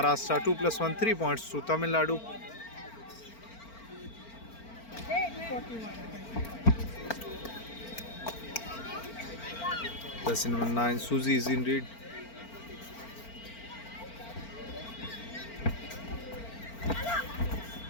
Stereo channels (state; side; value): late; right; 4.4 ms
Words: 2 + 1, 3 points to Tamil Nadu. Jersey number 9, Suzy is in lead.